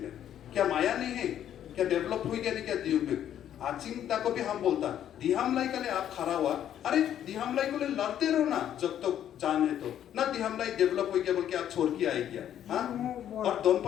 क्या माया नहीं है? क्या डेवलप हुई क्या नहीं? क्या दियुंगमुख आचिंगता को भी हम बोलता दिहामलाई के लिए आप खड़ा हुआ, अरे दिहामलाई को लिए लड़ते रहो ना जब तक जान है तो ना। दिहामलाई डेवलप हो गया बोल के आप छोड़ के आए क्या? हाँ और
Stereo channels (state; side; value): quieter; right; 10.5 dB